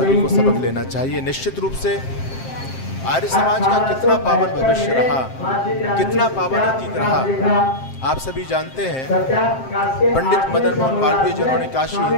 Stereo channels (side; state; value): right; late; 7.6 ms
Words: को सबक लेना चाहिए। निश्चित रूप से आर्य समाज का कितना पावन भविष्य रहा, कितना पावन अतीत रहा, आप सभी जानते हैं। पंडित मदन मोहन मालवीय जिन्होंने काशी